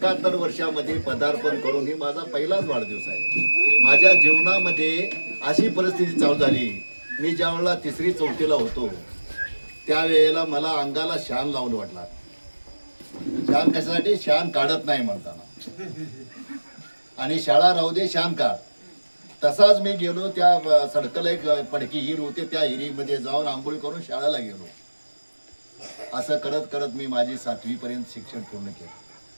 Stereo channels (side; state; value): both; inverted; correlation -1.00